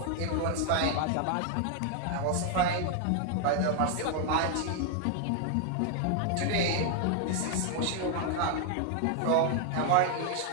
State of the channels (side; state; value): both; different; correlation 0.00